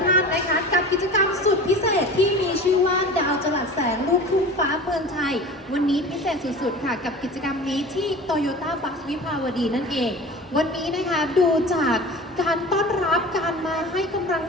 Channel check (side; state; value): both; normal; correlation 0.36